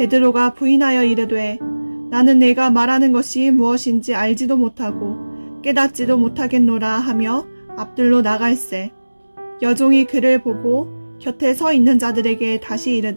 부인하여 이르되 나는 내가 말하는 것이 무엇인지 알지도 못하고 깨닫지도 못하겠노라 하며 앞들로 나갈새. 여종이 그를 보고 곁에 서 있는 자들에게 다시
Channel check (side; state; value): both; inverted; correlation -1.00